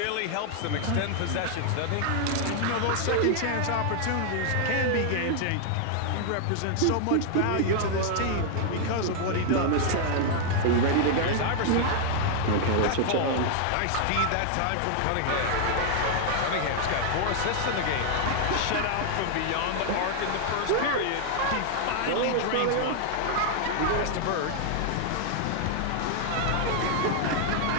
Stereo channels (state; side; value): different; both; correlation 0.00